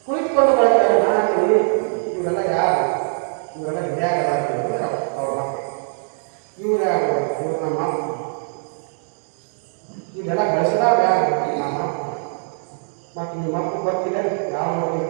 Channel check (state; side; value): silent; left; 65 dB below the other